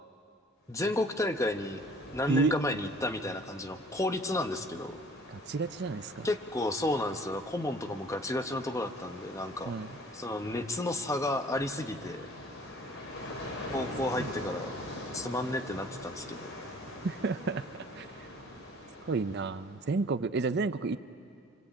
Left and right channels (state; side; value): normal; both; correlation 0.52